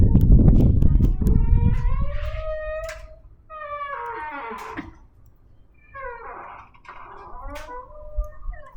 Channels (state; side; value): identical; both; correlation 1.00